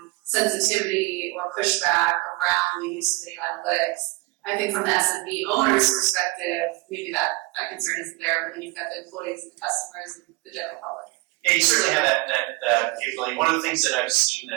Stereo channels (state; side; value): quieter; left; 23.6 dB